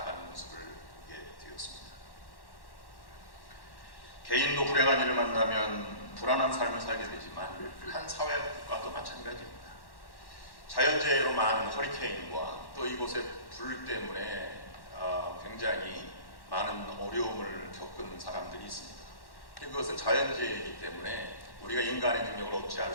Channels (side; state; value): right; late; 1.1 ms